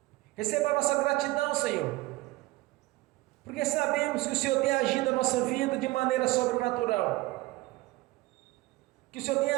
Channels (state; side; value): quieter; left; 20.0 dB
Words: Receba a nossa gratidão, Senhor, porque sabemos que o Senhor tem agido na nossa vida de maneira sobrenatural, que o Senhor tem